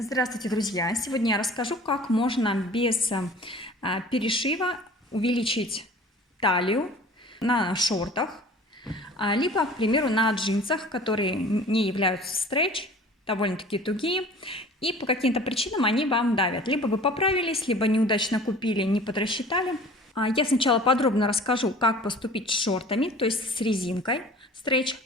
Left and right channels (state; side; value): normal; both; correlation 0.45